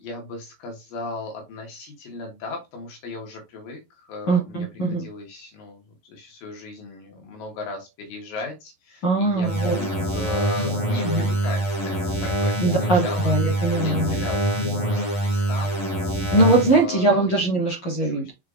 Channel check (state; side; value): late; right; 11 ms